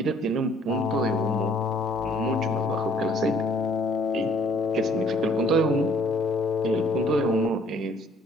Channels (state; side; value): normal; both; correlation 0.60